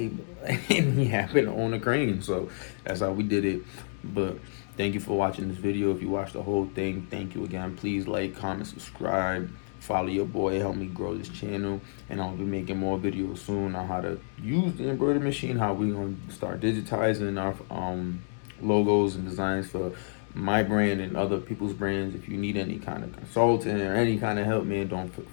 And he happened to own a crane, so that's how we did it. But thank you for watching this video. If you watched the whole thing, thank you again. Please like, comment, subscribe, follow your boy, help me grow this channel. And I'll be making more videos soon on how to use the embroidery machine, how we gonna start digitizing our logos and designs for my brand and other people's brands. If you need any kind of consulting or any kind of help, man, don't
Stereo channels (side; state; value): right; silent; digital silence